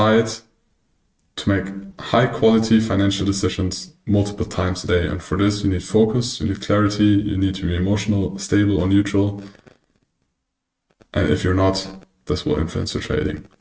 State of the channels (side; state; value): both; identical; correlation 1.00